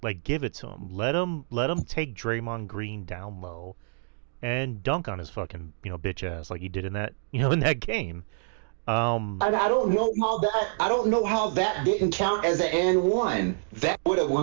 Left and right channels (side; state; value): left; silent; digital silence